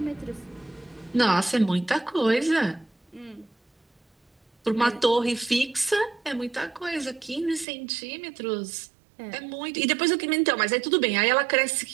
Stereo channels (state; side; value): drops out; left; at 7.7 s